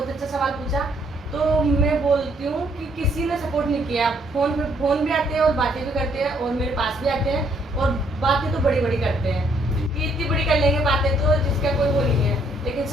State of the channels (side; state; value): both; normal; correlation 0.68